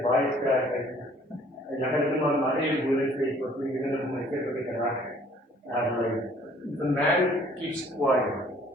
baas krijgt. En dan kan iemand maar één woord zeggen, wat ik weet dat mijn kind kan raken. The man keeps quiet,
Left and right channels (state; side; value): normal; both; correlation 0.57